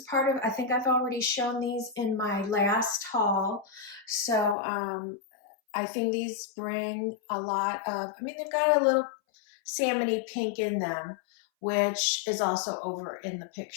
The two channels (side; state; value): right; drops out; at 4.5 s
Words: part of, I think I've already shown these in my last haul. So I think these bring a lot of, they've got a little salmony pink in them, which is also over in the